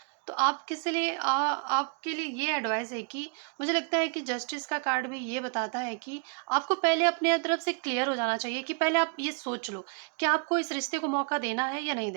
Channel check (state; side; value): quieter; left; 36.5 dB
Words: तो आप किस लिए आपके लिए ये एडवाइस है कि मुझे लगता है कि जस्टिस का कार्ड भी ये बताता है कि आपको पहले अपने तरफ से क्लियर हो जाना चाहिए, कि पहले आप ये सोच लो कि आपको इस रिश्ते को मौका देना है या नहीं